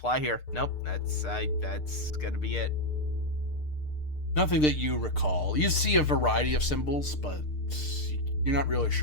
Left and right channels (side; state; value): right; late; 6.6 ms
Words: here. Nope, that's gonna be it. Nothing that you recall. You see a variety of symbols, but you're not really